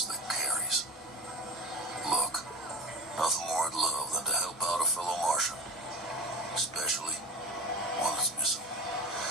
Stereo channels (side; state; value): both; normal; correlation 0.31